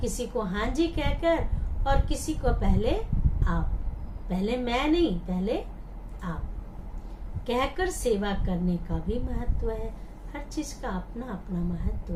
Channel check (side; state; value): both; identical; correlation 1.00